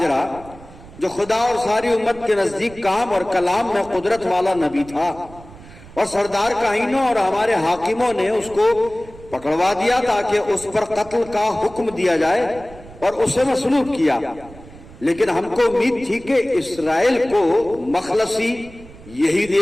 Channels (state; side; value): noise; right; rumble, 19 dB below the sound